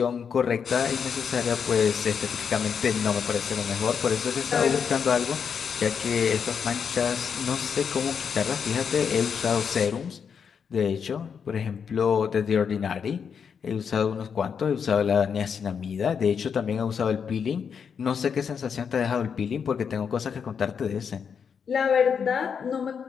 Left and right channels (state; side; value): quieter; right; 6.8 dB